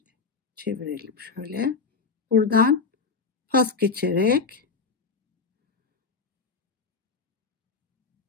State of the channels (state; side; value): quieter; right; 4.7 dB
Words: çevirelim şöyle. Buradan pas geçerek